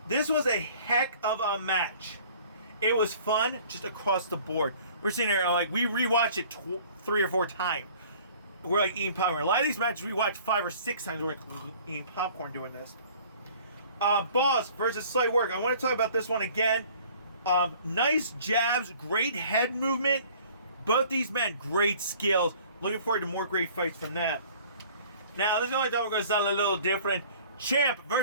This was a heck of a match. It was fun just across the board. We're sitting there, like, we rewatch it 3 or 4 times. We're like eating popcorn. A lot of these matches we watch 5 or 6 times. We're like eating popcorn doing this. Boss versus Slight Work. I want to talk about this one again. Nice jabs, great head movement. Both these men, great skills. Looking forward to more great fights from them. Now, this is the only time we're going to sound a little different. Champ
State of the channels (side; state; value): both; inverted; correlation -0.51